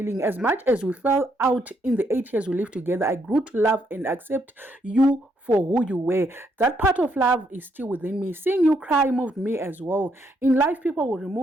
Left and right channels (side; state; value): both; normal; correlation 0.75